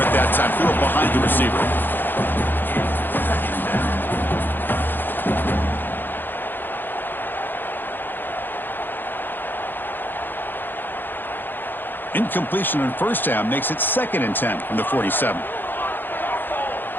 that time. Threw it behind the receiver. Incompletion on 1st down makes it 2nd and 10 from the 47.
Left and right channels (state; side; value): late; right; 0.094 ms